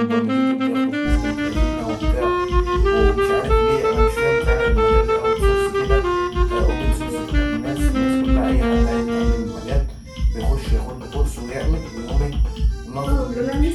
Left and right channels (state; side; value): identical; both; correlation 1.00